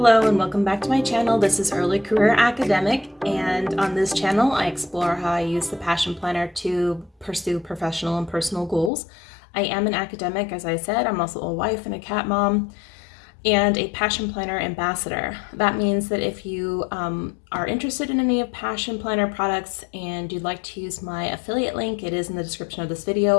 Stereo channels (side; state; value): right; drops out; at 8.9 s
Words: Hello and welcome back to my channel. This is Early Career Academic, and on this channel I explore how I use the Passion Planner to pursue professional and personal goals. I am an academic, as I said. I'm also a wife and a cat mom and a Passion Planner ambassador. That means that if you are interested in any of Passion Planner products and you'd like to use my affiliate link, it is in the description of this video.